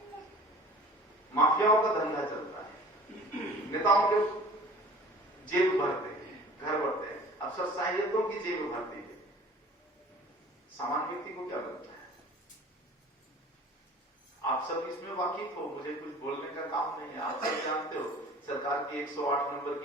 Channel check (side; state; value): both; normal; correlation 0.45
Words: माफियाओं का धंधा चलता है, नेताओं के जेब भरते हैं, घर भरते हैं, अफसरशाहियतों की जेब भरती है। सामान्य व्यक्ति को क्या लगता है? आप सब इसमें वाकिफ हो, मुझे कुछ बोलने का काम नहीं है। आप सब जानते हो सरकार की 108 नंबर